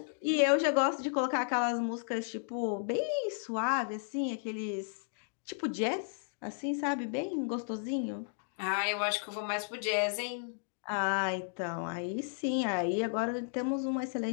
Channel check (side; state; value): right; silent; digital silence